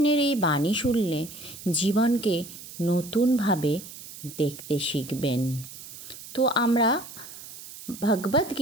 এই বাণী শুনলে জীবনকে নতুনভাবে দেখতে শিখবেন। তো আমরা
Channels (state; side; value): noise; right; hiss, 14 dB below the sound